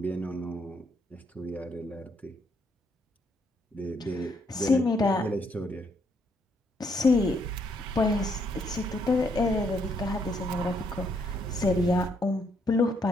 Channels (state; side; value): normal; both; correlation 0.72